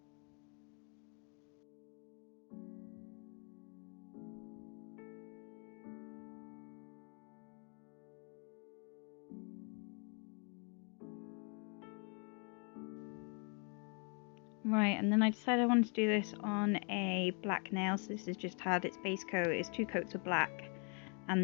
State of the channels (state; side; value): quieter; right; 37.0 dB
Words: Right, and then I decided I wanted to do this on a black nail. So this has just had its base coat, it's 2 coats of black